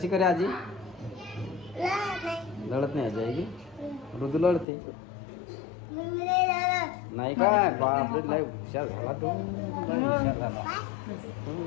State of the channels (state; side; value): drops out; right; at 4.7 s